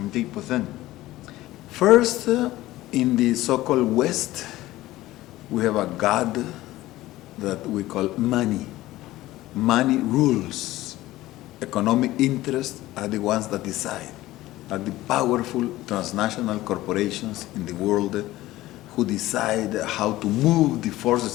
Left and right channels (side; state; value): right; quieter; 16.7 dB